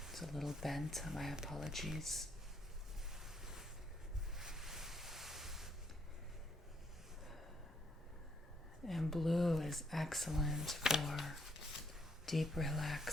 It's a little bent, my apologies. And blue is excellent for deep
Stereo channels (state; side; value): normal; both; correlation 0.72